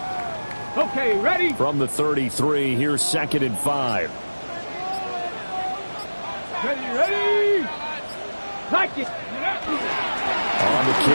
Okay, ready? From the 33, here's 2nd and 5. Ready? Like it. On the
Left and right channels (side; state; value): both; inverted; correlation -1.00